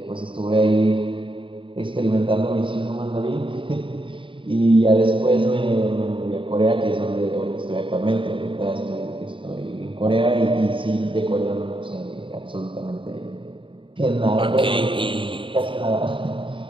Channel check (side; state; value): left; late; 0.25 ms